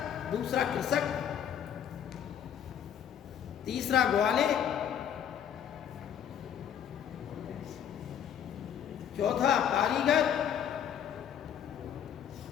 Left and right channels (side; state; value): right; quieter; 9.1 dB